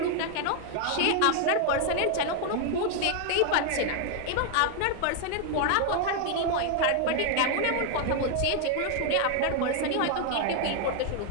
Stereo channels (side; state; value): both; different; correlation 0.00